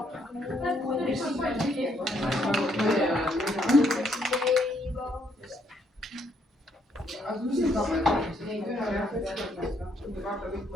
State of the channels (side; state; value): both; normal; correlation 0.71